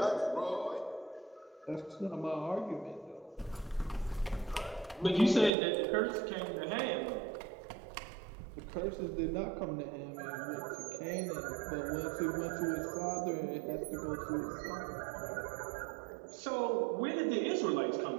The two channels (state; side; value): drops out; left; at 5.5 s